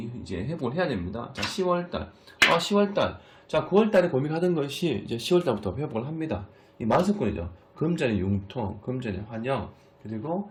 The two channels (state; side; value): identical; both; correlation 1.00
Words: 이제 회복을 해야 됩니다. 자, 10월달. 10월달. 자, 9월달에 고민하던 것이 이제 10월달부터 회복을 합니다. 이 만석권이죠. 금전의 융통, 금전의 환영, 그리고